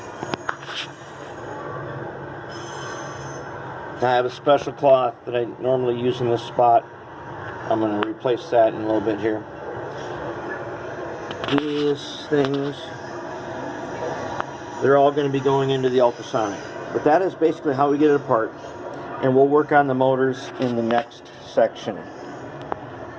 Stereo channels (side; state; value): both; identical; correlation 1.00